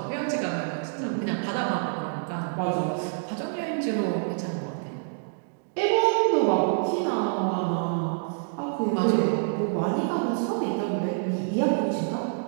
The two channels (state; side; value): silent; left; digital silence